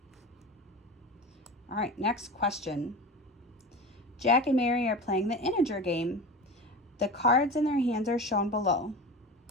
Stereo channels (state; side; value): normal; both; correlation 0.30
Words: All right, next question. Jack and Mary are playing the integer game. The cards in their hands are shown below.